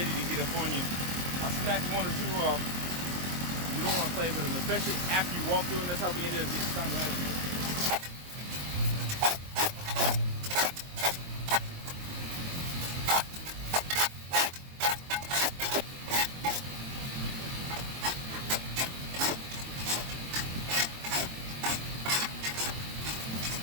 to get up on you. I'll snatch one or two off. You don't want to play with them, especially after you walk through, and that's how we ended up getting stung last year.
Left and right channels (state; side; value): late; left; 23 ms